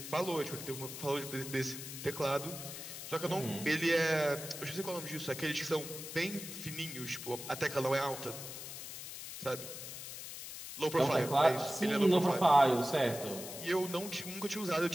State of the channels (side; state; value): left; noise; hiss, 9 dB below the sound